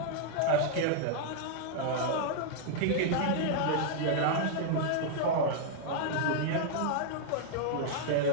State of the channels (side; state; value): both; different; correlation -0.01